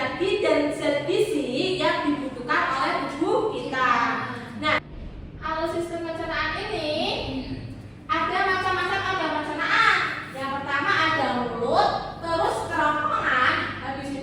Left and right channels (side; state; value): both; identical; correlation 1.00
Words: dan zat gizi yang dibutuhkan oleh tubuh kita. Nah, alur sistem pencernaan ini ada macam-macam organ pencernaan. Yang pertama ada mulut, terus kerongkongan, habis